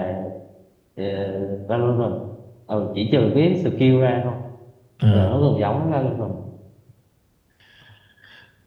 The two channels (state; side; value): identical; both; correlation 1.00